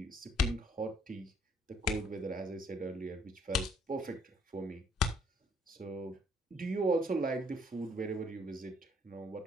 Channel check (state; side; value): normal; both; correlation 0.64